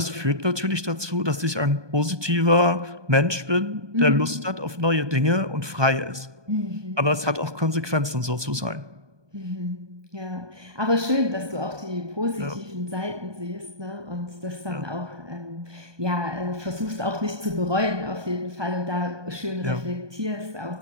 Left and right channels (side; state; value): left; late; 1.2 ms